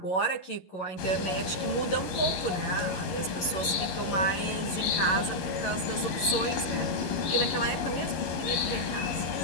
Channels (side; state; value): right; late; 11 ms